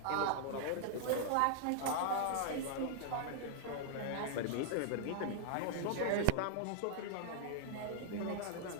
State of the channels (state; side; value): different; both; correlation -0.01